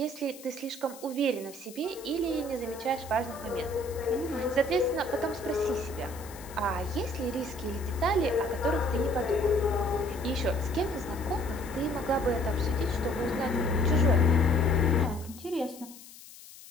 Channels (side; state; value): left; noise; hiss, 18 dB below the sound